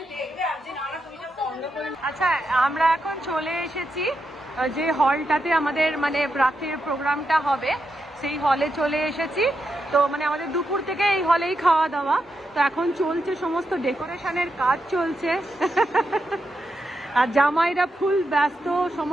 আচ্ছা, আমরা এখন চলে এসেছি যে হলটাতে আমাদের মানে রাত্রির প্রোগ্রামটা হবে, সেই হলে চলে এসেছি। তো মানে আমাদের দুপুর থেকে এই হলেই খাওয়া দাওয়া। তো এখন চলছে সমস্ত ডেকোরেশনের কাজ চলছে। আর জামাইরা ফুল ব্যস্ত,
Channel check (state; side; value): normal; both; correlation 0.85